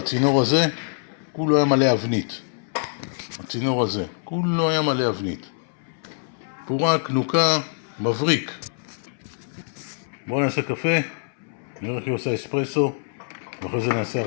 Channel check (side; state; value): right; silent; 62 dB below the other